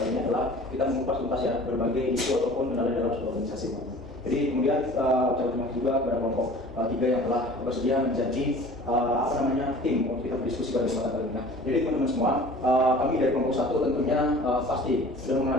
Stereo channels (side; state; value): both; normal; correlation 0.45